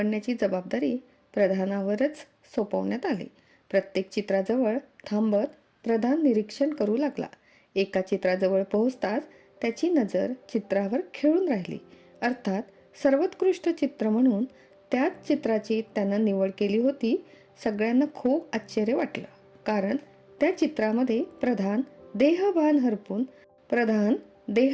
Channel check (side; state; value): both; identical; correlation 1.00